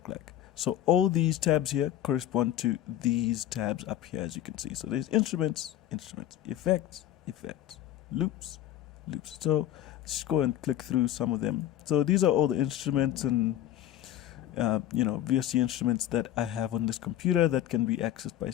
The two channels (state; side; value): quieter; right; 12.1 dB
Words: like. So all these tabs here correspond to these tabs up here, as you can see. So there's instruments, instruments, effects, effects, loops, loops. So let's go and click through some of them. So these are all the instruments and VST instruments that I have on this computer that can be accessed by